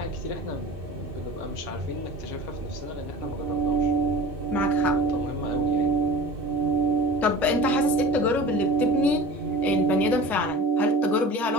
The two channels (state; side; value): normal; both; correlation 0.38